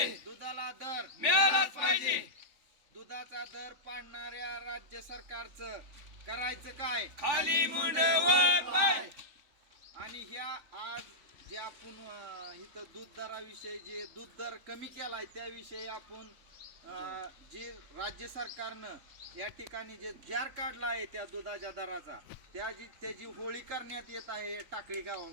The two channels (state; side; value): late; left; 3.5 ms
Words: दुधाला दर मिळालाच पाहिजे. दुधाचा दर पाडणाऱ्या राज्य सरकारचं करायचं काय? खाली मुंडे वर पाय. आणि ह्या आज जे आपण इथं दूध दराविषयी जे दूध दर कमी केलाय त्याविषयी आपण जे राज्य सरकारनं या ठिकाणी जे जार काढला आहे त्या दुधाच्या दराचा त्याची होळी करण्यात येत आहे टाकळी